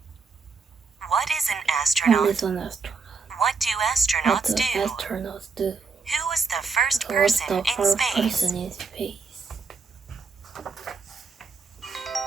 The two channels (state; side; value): quieter; left; 4.8 dB